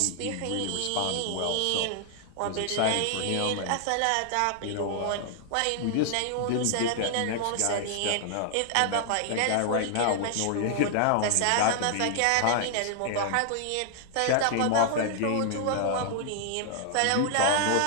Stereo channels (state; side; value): different; both; correlation 0.00